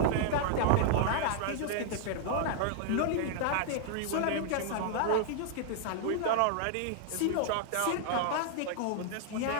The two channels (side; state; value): both; different; correlation -0.01